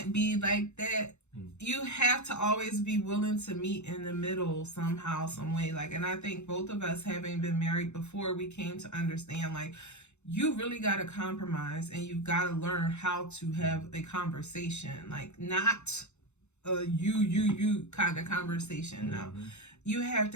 be like that you have to always be willing to meet in the middle somehow, some way. Like, and I think both of us, having been married before, we came to understand, like, you really got to compromise, and you've got to learn how to have a conversation, like, not a you kind of conversation. No, you have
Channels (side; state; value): right; late; 0.82 ms